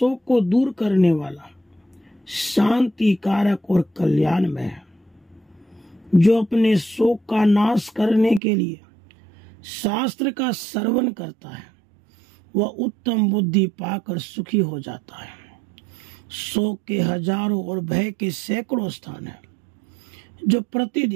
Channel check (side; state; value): left; drops out; at 8.4 s